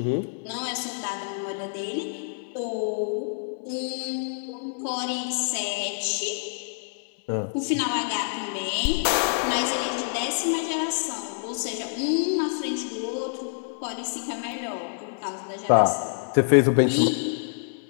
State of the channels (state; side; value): silent; right; 60 dB below the other